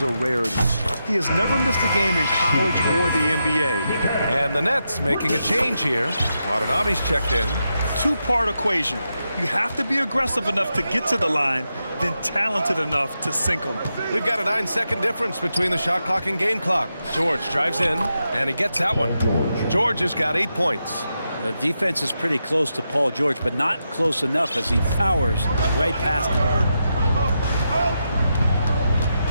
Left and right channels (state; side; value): inverted; both; correlation -0.86